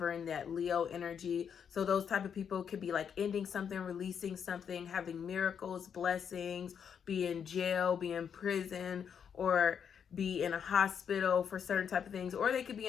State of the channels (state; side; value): quieter; right; 7.6 dB